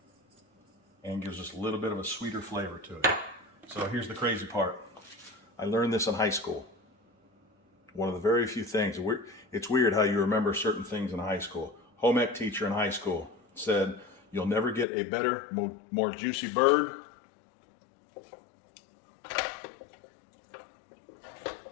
And gives us a little bit of a sweeter flavor to it. So here's the crazy part. I learned this in high school. One of the very few things, it's weird how you remember certain things in high school. Home ec teacher in high school said, you'll never get a better, more juicy bird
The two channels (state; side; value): drops out; right; at 14.9 s